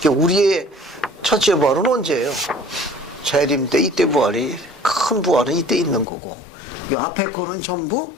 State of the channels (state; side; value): drops out; right; at 6.1 s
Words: 우리의 첫째 부활은 언제예요? 재림 때 이때 부활이 큰 부활은 이때 있는 거고 이 앞에 거는 전부